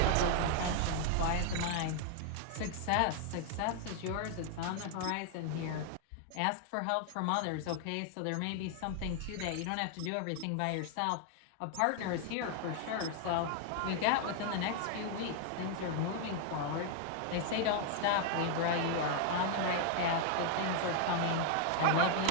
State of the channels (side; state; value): both; different; correlation 0.00